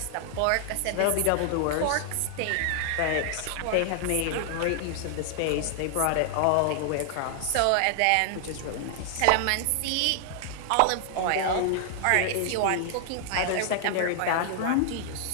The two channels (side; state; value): both; different; correlation 0.00